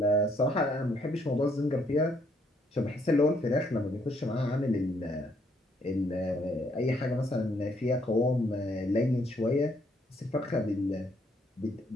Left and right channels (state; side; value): normal; both; correlation 0.70